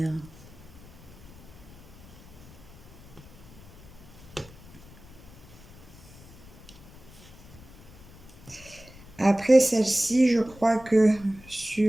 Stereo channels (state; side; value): noise; left; rumble, 20 dB below the sound